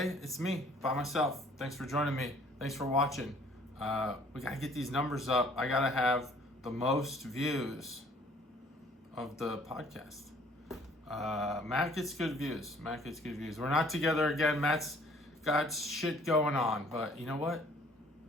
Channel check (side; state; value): both; normal; correlation 0.57